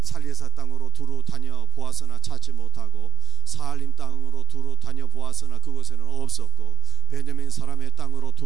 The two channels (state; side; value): quieter; left; 5.9 dB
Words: 땅으로 두루 다녀 보았으나 찾지 못하고 사알림 땅으로 두루 다녀 보았으나 그곳에는 없었고 베냐민 사람의 땅으로